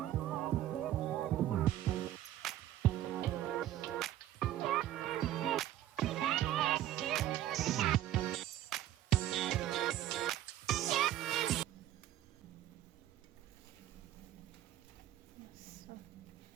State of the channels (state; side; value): quieter; left; 13.0 dB